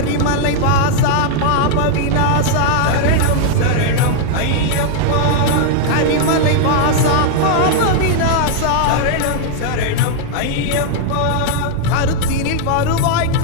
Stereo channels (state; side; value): different; both; correlation 0.00